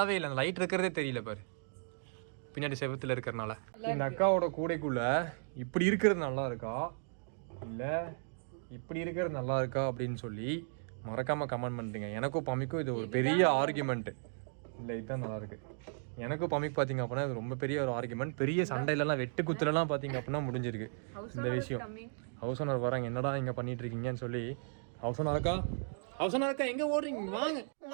இல்லை. அந்த லைட் இருக்கிறதே தெரியல பாரு, பின்னாடி செவத்துல இருக்கிறனால. இந்த அக்காவோட கூடைக்குள்ள இப்படி இருக்கிறது நல்லா இருக்கா இல்ல இப்படி இருக்கிறது நல்லா இருக்கா அப்படின்னு சொல்லி மறக்காம கமெண்ட் பண்ணுறீங்க. எனக்கும் பம்மிக்கும் இது ஒரு பெரிய ஆர்குமெண்ட். இல்லை, இதுதான் நல்லா இருக்கு. எனக்கும் பம்மிக்கு பார்த்தீங்க அப்படின்னா இது ரொம்ப பெரிய ஒரு ஆர்குமெண்ட். பெரிய சண்டையிலலாம் வெட்டு குத்துலலாம் பார்த்தீங்க அப்படின்னா முடிஞ்சிருக்கு இந்த விஷயம். ஹவுஸ் ஓனர் வராங்க, என்னடா இங்கே பண்ணிட்டு இருக்கீங்கன்னு சொல்லி. ஹவுஸ் ஓனர் அக்கா எங்க ஓடுறீங்க? வாங்க,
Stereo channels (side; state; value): left; silent; digital silence